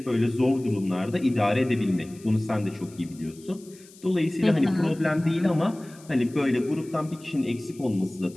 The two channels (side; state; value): left; noise; hiss, 24 dB below the sound